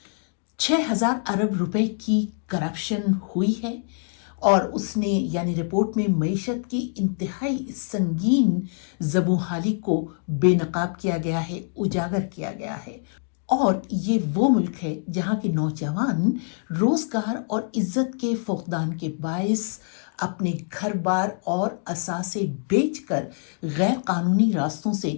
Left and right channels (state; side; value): silent; right; 59 dB below the other